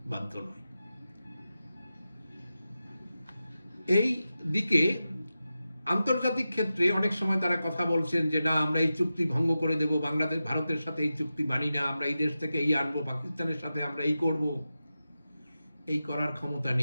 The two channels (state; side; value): inverted; both; correlation -0.93